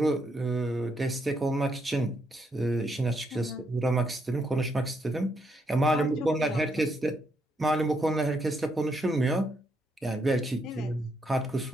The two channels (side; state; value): both; normal; correlation 0.77